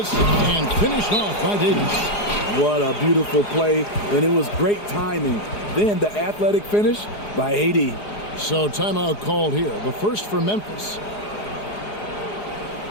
and finished off by Davis. What a beautiful play, and it was great timing. Then the athletic finish by AD. So timeout called here. The first for Memphis.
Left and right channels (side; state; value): right; late; 4.8 ms